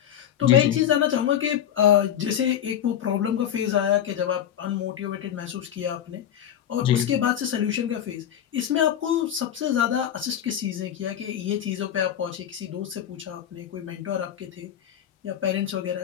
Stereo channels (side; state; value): right; quieter; 10.0 dB